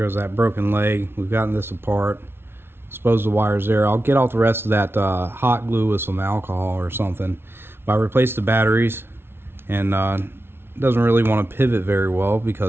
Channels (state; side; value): late; left; 0.11 ms